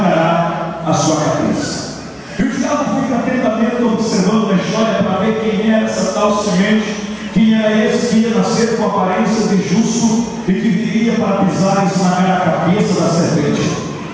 a sua cabeça. E o diabo fica atentamente observando a história para ver quem era essa tal semente, quem era esse que ia nascer com aparência de justo e que viria para pisar e esmagar a cabeça da serpente.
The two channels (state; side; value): identical; both; correlation 1.00